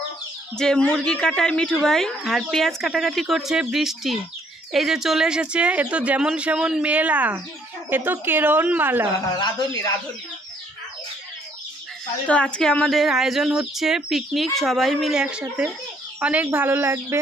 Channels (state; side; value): normal; both; correlation 0.66